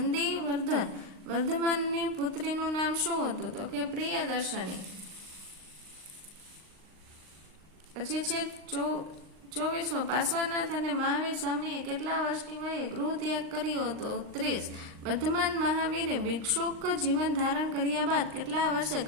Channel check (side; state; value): left; late; 39 ms